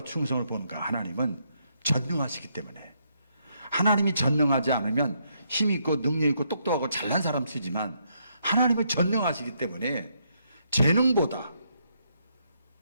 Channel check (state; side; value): inverted; both; correlation -0.75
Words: 충성을 보는가? 하나님은 전능하시기 때문에. 하나님이 전능하지 않으면 힘있고 능력있고 똑똑하고 잘난 사람 쓰지만 하나님은 전능하시기 때문에 재능보다